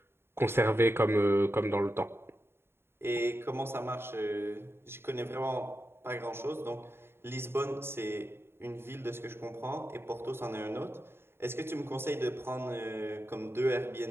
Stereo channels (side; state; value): left; late; 0.11 ms